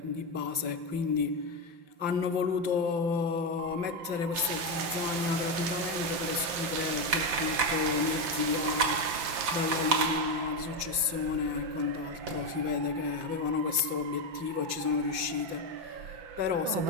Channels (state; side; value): late; left; 5.8 ms